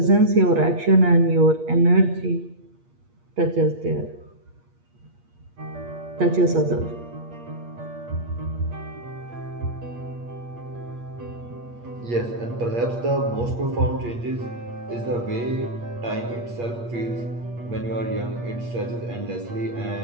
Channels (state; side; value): late; left; 8.5 ms